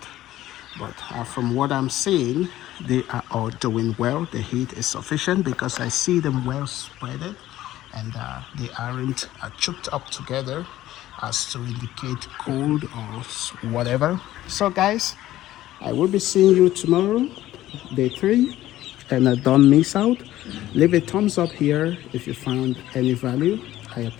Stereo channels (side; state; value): right; quieter; 14.5 dB